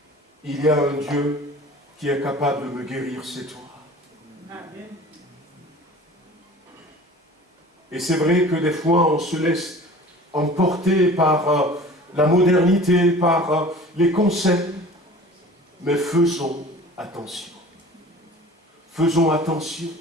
Il y a un Dieu qui est capable de me guérir, c'est toi. Amen. Et c'est vrai que des fois, on se laisse emporter par la modernité, par les concepts, mais faisons attention. Faisons attention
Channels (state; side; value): normal; both; correlation 0.43